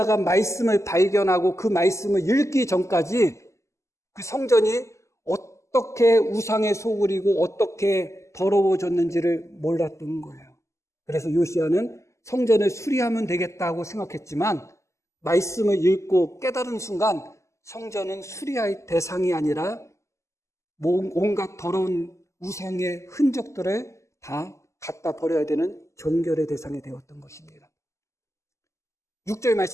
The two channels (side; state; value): right; late; 0.14 ms